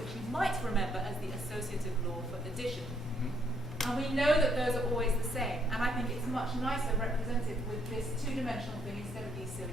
you might remember as the associative law for addition. And we know that those are always the same, and I think it's much nicer represented with this 2-dimensional thing instead of these silly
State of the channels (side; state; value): both; normal; correlation 0.70